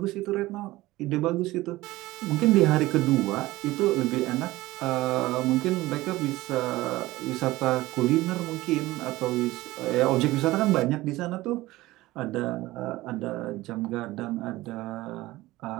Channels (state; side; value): quieter; left; 18.2 dB